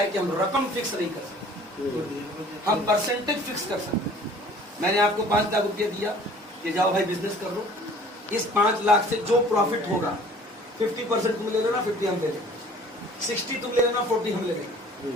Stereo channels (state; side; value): normal; both; correlation 0.50